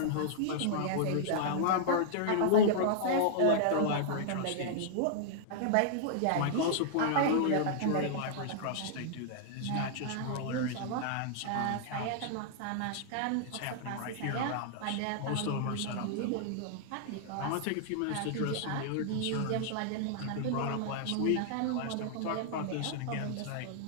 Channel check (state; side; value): different; both; correlation -0.01